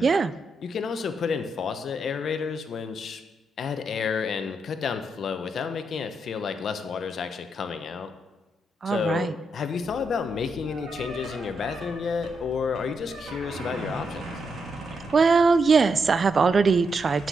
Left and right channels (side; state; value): both; normal; correlation 0.81